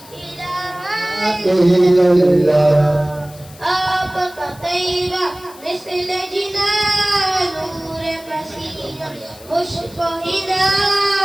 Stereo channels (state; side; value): noise; left; hiss, 21 dB below the sound